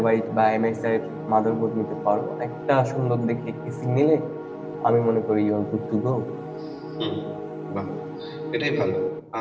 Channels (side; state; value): both; identical; correlation 1.00